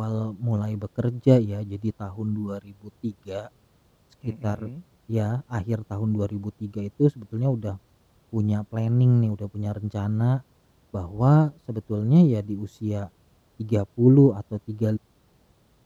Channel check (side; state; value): both; identical; correlation 1.00